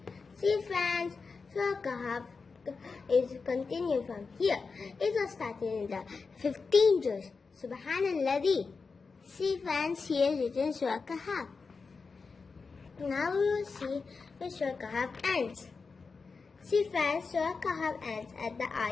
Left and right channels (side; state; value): right; quieter; 4.7 dB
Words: See, friends, Surah Kahf is continued from here. It was started in the 15 juz. Subhanallah. See, friends, here is written Surah Kahf. Now we will see where Surah Kahf ends. See, friends, Surah Kahf ends at the